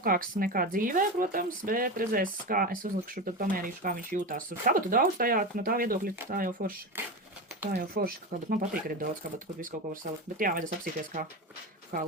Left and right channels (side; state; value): both; normal; correlation 0.22